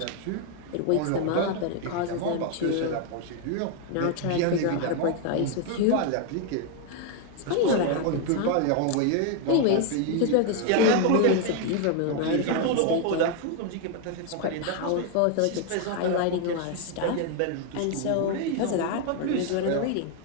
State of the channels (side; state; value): both; different; correlation 0.01